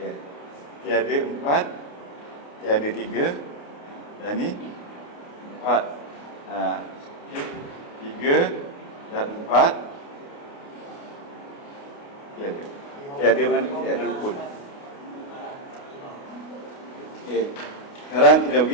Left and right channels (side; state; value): right; late; 28 ms